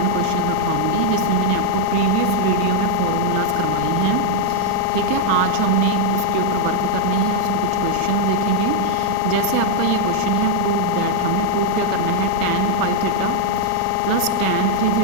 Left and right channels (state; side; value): different; both; correlation 0.00